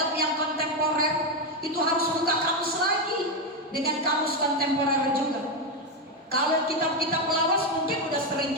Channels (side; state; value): both; normal; correlation 0.08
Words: yang kontemporer itu harus buka kamus lagi dengan kamus kontemporer juga. Kalau kitab-kitab lawas mungkin udah sering